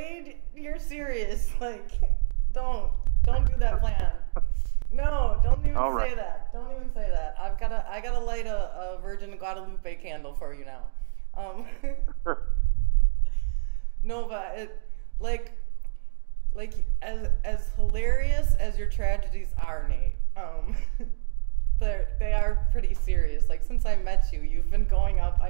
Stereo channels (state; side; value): silent; left; digital silence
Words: you're serious. Like, don't do that plan. No, don't even say that. Don't even say that. I gotta light a Virgin Guadalupe candle for you now. No, but it, like as hilarious as your tragedies are, Nate. They are pretty serious. Like, since I met you, you've been going up.